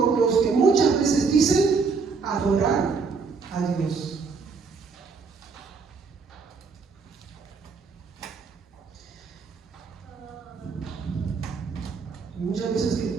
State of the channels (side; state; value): left; quieter; 5.0 dB